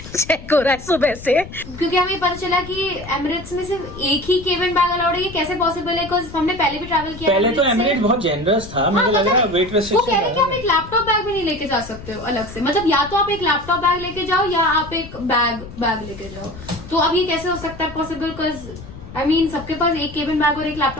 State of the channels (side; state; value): left; noise; rumble, 14 dB below the sound